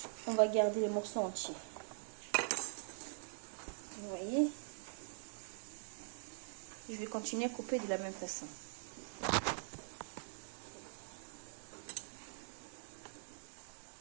on va garder les morceaux entiers. Vous voyez? Je vais continuer à couper de la même façon.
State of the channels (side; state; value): left; silent; digital silence